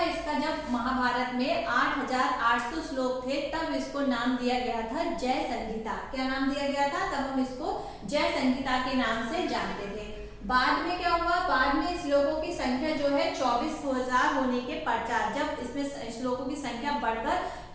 इसका जब महाभारत में 8,800 श्लोक थे तब इसको नाम दिया गया था जय संहिता। क्या नाम दिया गया था? तब हम इसको जय संहिता के नाम से जानते थे। बाद में क्या हुआ? बाद में श्लोकों की संख्या जो है 24,000 होने के पश्चात, जब इसमें श्लोकों की संख्या बढ़कर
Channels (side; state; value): both; identical; correlation 1.00